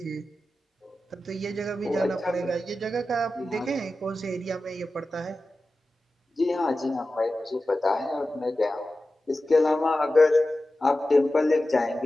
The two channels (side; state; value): both; normal; correlation 0.94